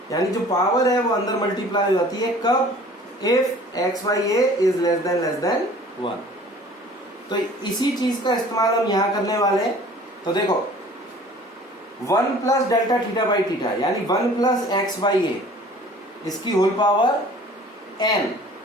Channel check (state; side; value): normal; both; correlation 0.49